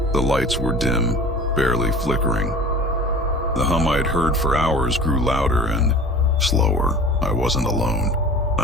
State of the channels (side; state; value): both; normal; correlation 0.41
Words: The lights were dim, barely flickering. The hum I'd heard for hours grew louder and slower. I wasn't alone.